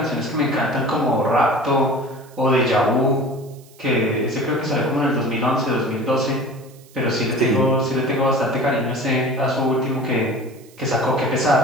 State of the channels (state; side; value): noise; right; hiss, 27 dB below the sound